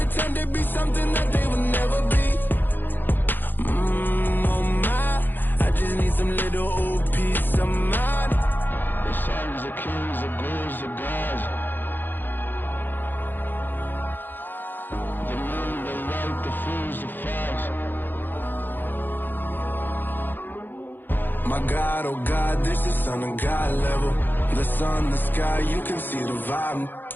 to be something that they will never be. Oh my, I just need some little old peace of mind. The sons, the kings, the ghouls, the gods. The moon, the light, the fools, the facts. My God, oh God, this is Son of God level. The sun, the sky, you can see the vibe.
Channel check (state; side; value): late; right; 0.091 ms